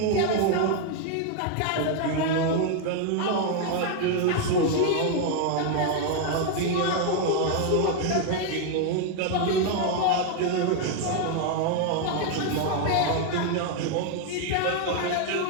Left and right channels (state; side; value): different; both; correlation 0.01